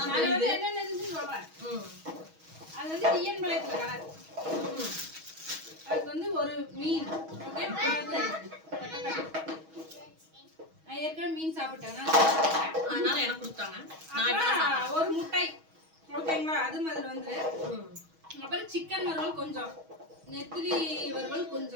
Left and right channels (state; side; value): late; left; 6.3 ms